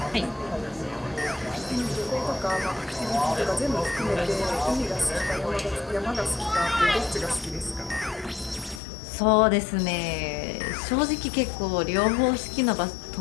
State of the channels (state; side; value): drops out; right; at 8.8 s